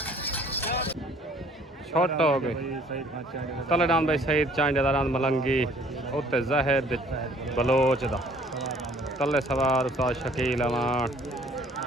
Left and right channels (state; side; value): normal; both; correlation 0.57